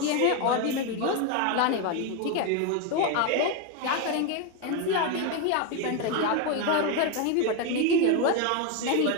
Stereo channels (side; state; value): both; different; correlation 0.02